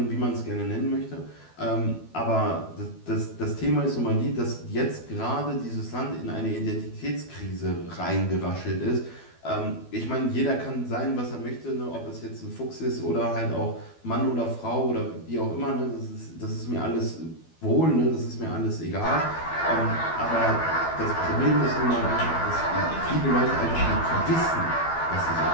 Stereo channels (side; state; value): right; late; 12 ms